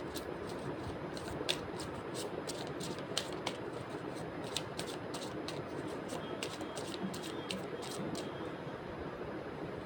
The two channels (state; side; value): identical; both; correlation 1.00